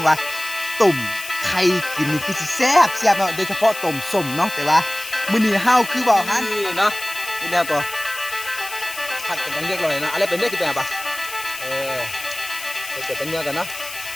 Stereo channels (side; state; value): left; noise; hiss, 11 dB below the sound